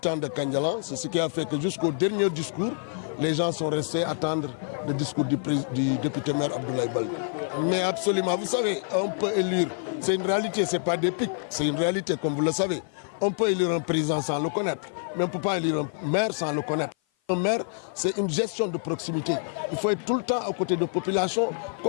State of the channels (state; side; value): silent; right; 55 dB below the other